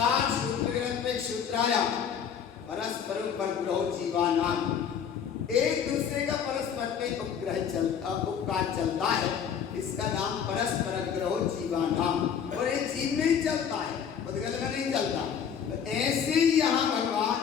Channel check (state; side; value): quieter; right; 7.7 dB